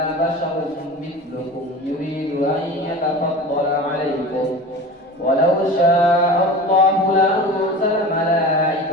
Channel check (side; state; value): both; normal; correlation 0.34